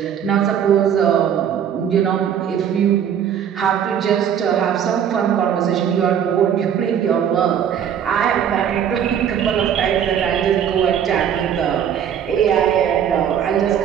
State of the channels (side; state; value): left; quieter; 8.9 dB